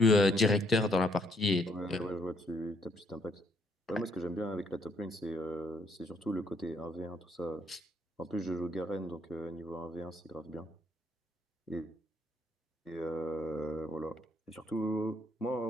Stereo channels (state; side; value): normal; both; correlation 0.69